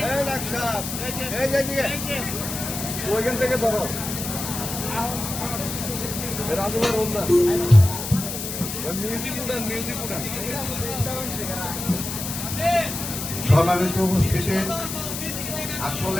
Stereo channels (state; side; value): noise; left; hiss, 6 dB below the sound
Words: ওইখান থেকে ধরো রাজুভাই রোলদা মিউজিক উঠান সম্মানিত উপস্থিতি,